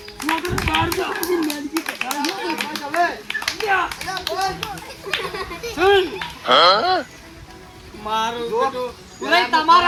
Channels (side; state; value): both; identical; correlation 1.00